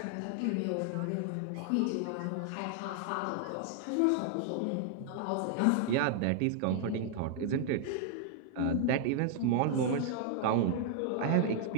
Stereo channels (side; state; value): both; different; correlation 0.00